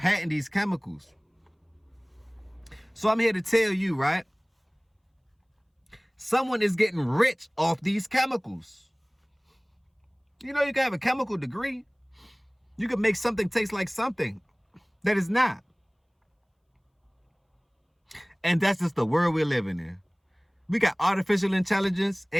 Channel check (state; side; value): identical; both; correlation 1.00